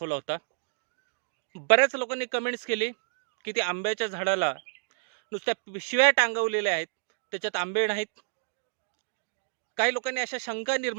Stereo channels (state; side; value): silent; left; digital silence